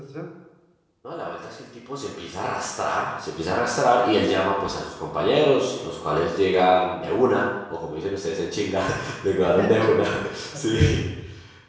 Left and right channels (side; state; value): both; identical; correlation 1.00